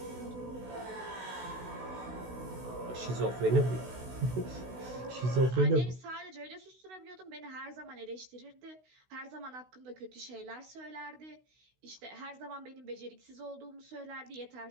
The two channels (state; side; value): late; left; 16 ms